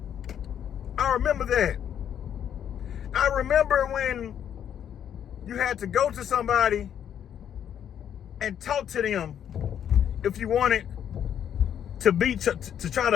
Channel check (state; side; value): quieter; right; 9.3 dB